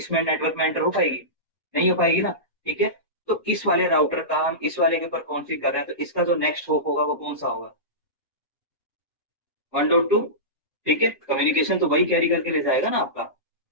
नेटवर्क में एंटर हो पाएगी, नहीं हो पाएगी ना। ठीक है, तो इस वाले राउटर का हम इस वाले के ऊपर कॉन्फ़िग कर रहे हैं, तो इसका जो नेक्स्ट होप होगा वो कौन सा होगा, 1.2। ठीक है, कम्युनिकेशन तो वही कैरी करके ले जाएगा ना आपका।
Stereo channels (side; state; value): both; normal; correlation -0.19